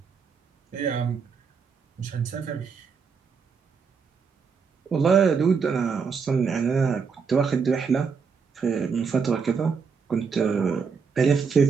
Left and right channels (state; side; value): quieter; left; 5.7 dB